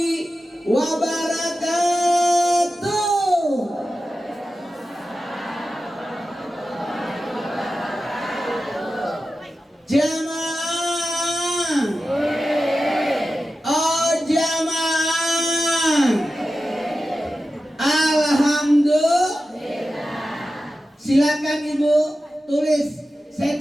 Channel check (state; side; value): normal; both; correlation 0.93